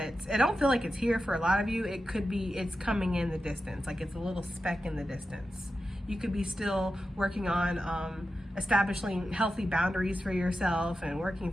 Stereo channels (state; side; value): normal; both; correlation 0.91